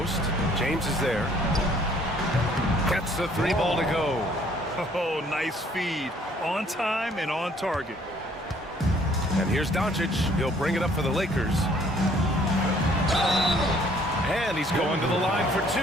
James is there. Gets the 3 ball to go. Oh, nice feed. On time and on target. And here's Doncic. He'll bring it up for the Lakers. And he's going to the line for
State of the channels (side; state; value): both; normal; correlation 0.60